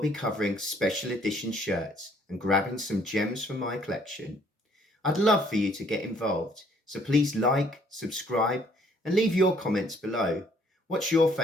covering special edition shirts and grabbing some gems from my collection. I'd love for you to get involved, so please like, subscribe, and leave your comments below. What's your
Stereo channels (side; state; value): both; normal; correlation 0.62